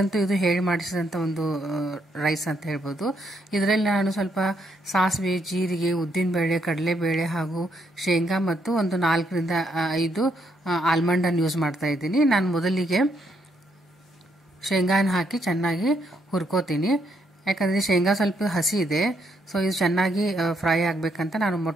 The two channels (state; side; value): normal; both; correlation 0.75